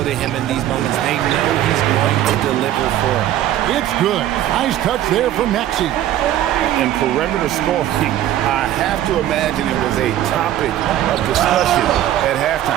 to him in these moments. They know he's going to deliver for them. It's good. Nice touch there from Maxey. In perimeter scoring, I have to imagine it was a topic of discussion at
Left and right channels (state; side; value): quieter; left; 12.5 dB